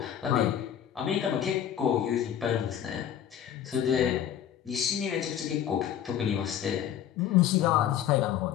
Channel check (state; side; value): quieter; right; 10.0 dB